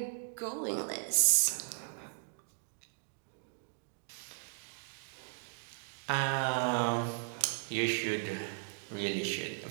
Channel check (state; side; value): silent; left; digital silence